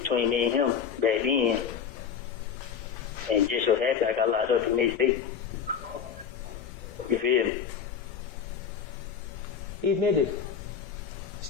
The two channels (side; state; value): right; quieter; 7.3 dB